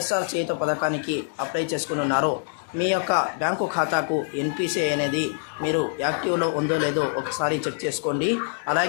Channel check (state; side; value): silent; right; digital silence